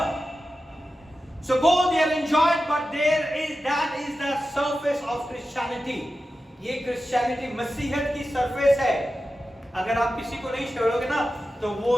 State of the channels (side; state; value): both; normal; correlation 0.92